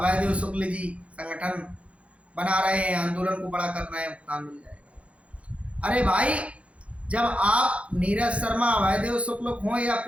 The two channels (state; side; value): late; left; 0.063 ms